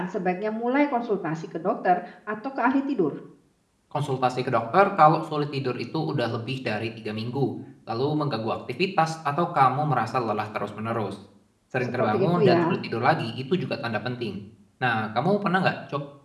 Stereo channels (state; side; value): identical; both; correlation 1.00